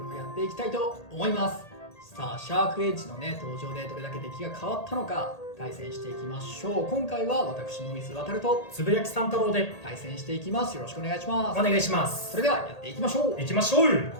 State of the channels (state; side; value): late; right; 1.8 ms